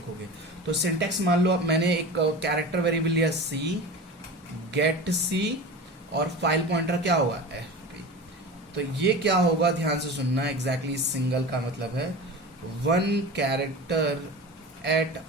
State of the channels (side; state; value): both; normal; correlation 0.32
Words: तो सिंटेक्स मान लो, अब मैंने एक कैरेक्टर वेरिएबल लिया सी, गेट सी, और फाइल पॉइंटर क्या होगा? एफपी। तो ये क्या होगा? ध्यान से सुनना, एग्जैक्टली सिंगल का मतलब है one character at